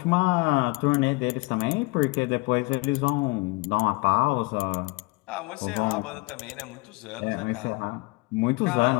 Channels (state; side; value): quieter; right; 25.7 dB